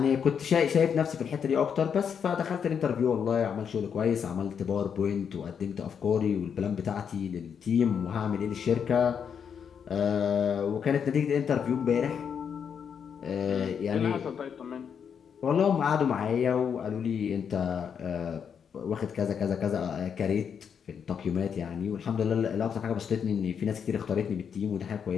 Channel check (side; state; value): right; quieter; 7.3 dB